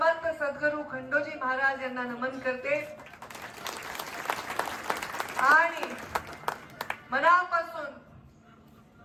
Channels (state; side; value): identical; both; correlation 1.00